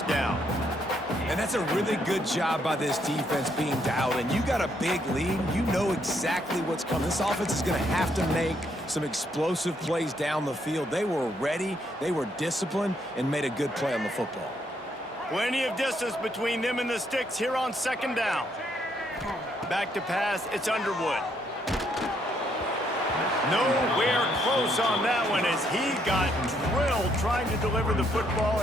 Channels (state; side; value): normal; both; correlation 0.73